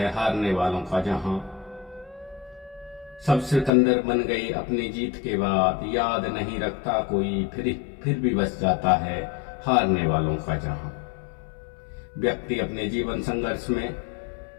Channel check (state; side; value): drops out; right; at 3.7 s